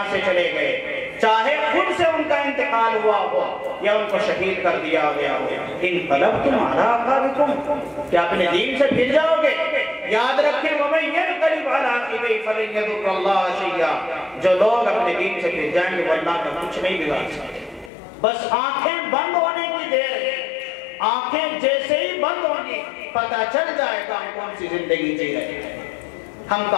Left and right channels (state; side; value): drops out; right; at 17.9 s